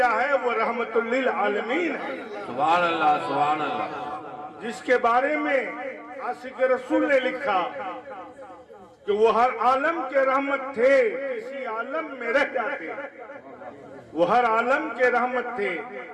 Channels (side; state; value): both; identical; correlation 1.00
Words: ہے وہ رحمت للعالمین ہے۔ سبحان اللہ سبحان اللہ۔ جس کے بارے میں عاشق رسول نے لکھا کہ وہ ہر عالم کے رحمت تھے، کسی عالم میں رہ جاتے۔ وہ ہر عالم کے رحمت تھے،